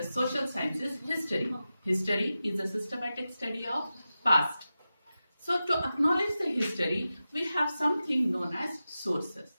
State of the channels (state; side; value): inverted; both; correlation -0.93